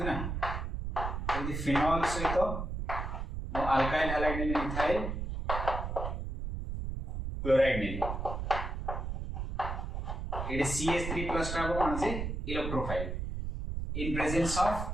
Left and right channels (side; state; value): right; noise; rumble, 4 dB below the sound